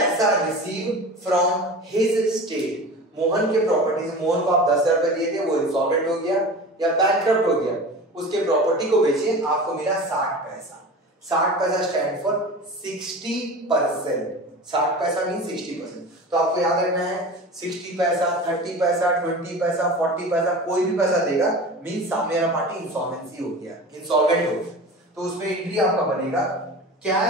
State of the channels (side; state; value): both; normal; correlation 0.34